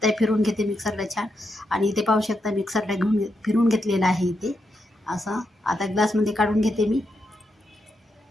हे फिरून घेते मिक्सरला छान. आणि इथे पाहू शकता मिक्सरला फिरून घेतलेलं आहे इथे असं. आता ग्लासमध्ये काढून घेते मी.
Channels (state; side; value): normal; both; correlation 0.83